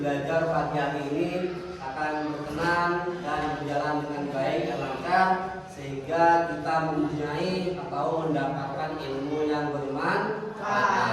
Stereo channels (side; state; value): both; identical; correlation 1.00